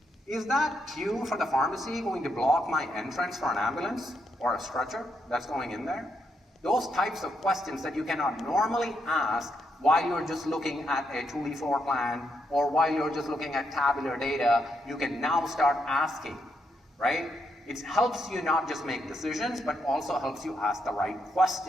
is that queue for the pharmacy going to block my entrance for an ambulance or a stretcher that's going in there? Those types of questions that you cannot normally ask while you're just looking at a 2D floor plan, or while you're just looking at tabular data, you can now start asking, right? It helps you not just make decisions, but also helps you ask the right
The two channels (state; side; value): normal; both; correlation 0.79